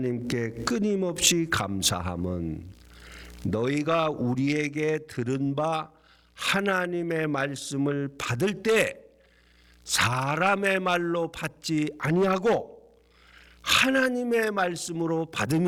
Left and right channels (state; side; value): identical; both; correlation 1.00